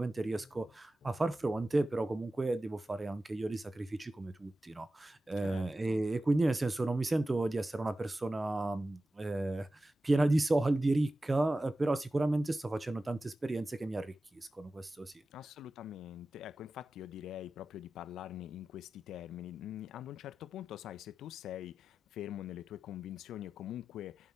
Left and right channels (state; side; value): normal; both; correlation 0.94